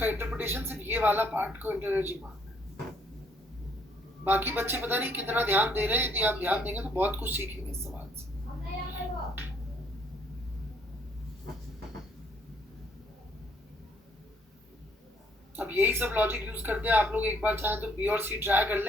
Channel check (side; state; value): both; normal; correlation 0.66